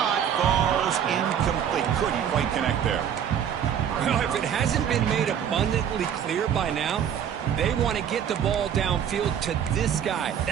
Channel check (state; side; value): quieter; left; 8.9 dB